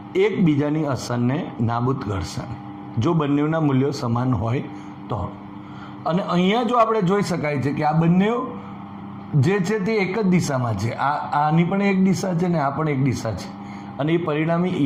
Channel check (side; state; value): both; identical; correlation 1.00